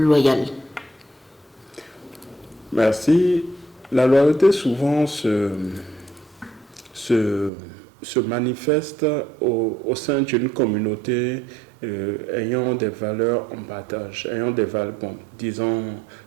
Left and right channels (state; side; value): drops out; left; at 7.5 s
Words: Merci. La loyauté souvent se manifeste au sein d'une communauté ayant des valeurs en partage,